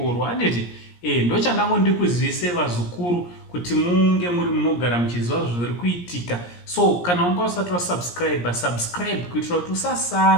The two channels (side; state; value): right; late; 17 ms